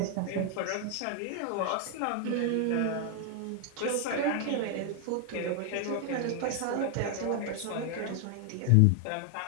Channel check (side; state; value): both; different; correlation 0.00